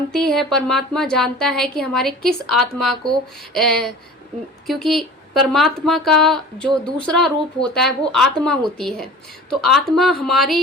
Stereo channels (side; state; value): both; normal; correlation 0.41